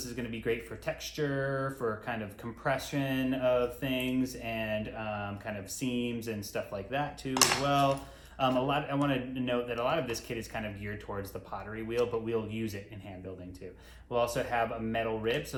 is going to be great for texture, for kind of compression of things, and kind of seams and stuff like that too as well. I want to note that a lot of this kit is kind of geared towards the pottery wheel, but we'll use it in hand building too. We'll also have a metal rib, so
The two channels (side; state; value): both; identical; correlation 1.00